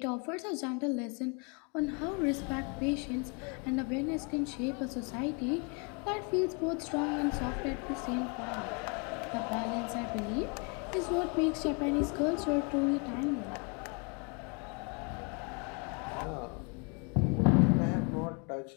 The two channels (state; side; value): quieter; right; 34.4 dB